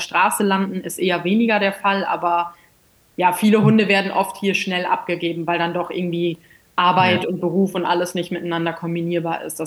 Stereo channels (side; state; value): both; identical; correlation 1.00